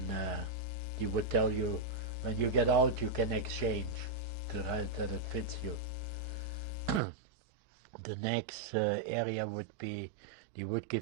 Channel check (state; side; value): drops out; left; at 7.0 s